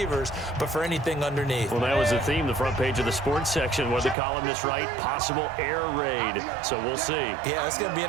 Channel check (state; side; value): drops out; left; at 4.2 s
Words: but for anything underneath. Well, that was the theme, the front page of the sports section, where the columnists write possible air raid. So we'll see. Yeah, it's going to be